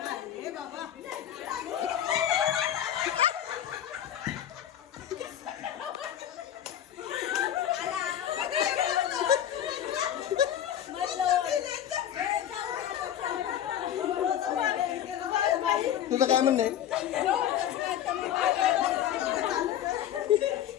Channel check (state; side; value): quieter; right; 10.6 dB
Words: तुझं काय म्हणणं आहे.